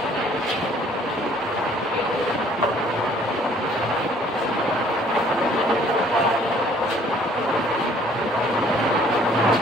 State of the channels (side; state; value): both; normal; correlation 0.58